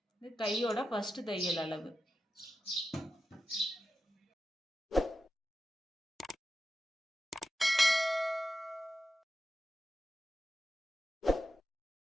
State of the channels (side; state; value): both; normal; correlation 0.91